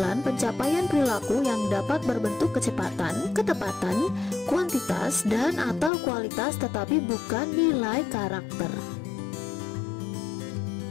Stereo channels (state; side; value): drops out; right; at 5.9 s